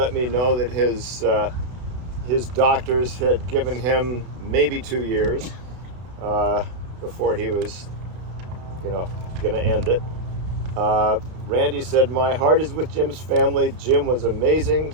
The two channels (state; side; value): late; left; 32 ms